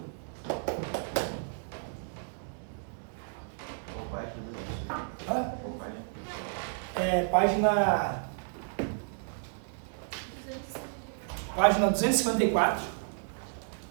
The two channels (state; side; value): silent; left; 56 dB below the other